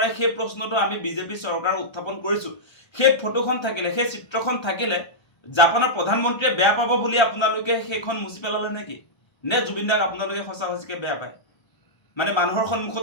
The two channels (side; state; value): right; late; 1.3 ms